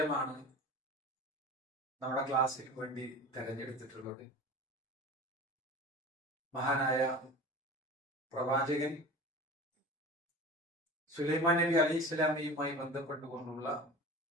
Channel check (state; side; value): normal; both; correlation 0.35